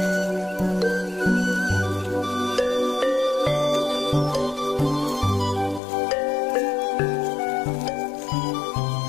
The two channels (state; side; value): drops out; right; at 5.8 s